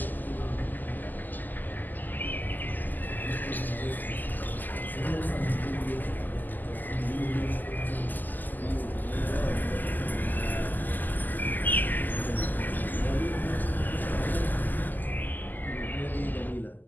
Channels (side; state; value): right; late; 0.086 ms